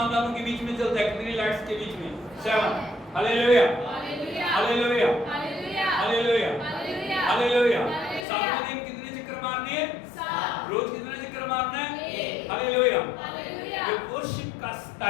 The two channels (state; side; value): drops out; right; at 8.2 s